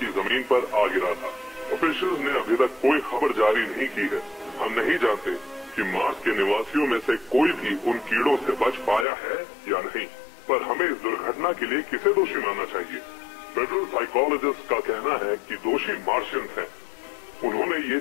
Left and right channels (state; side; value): drops out; right; at 9.1 s